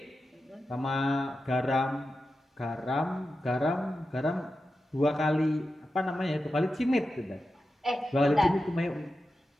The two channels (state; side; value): normal; both; correlation 0.91